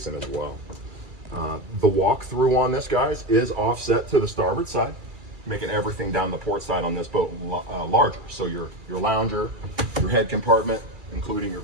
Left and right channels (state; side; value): late; left; 2.3 ms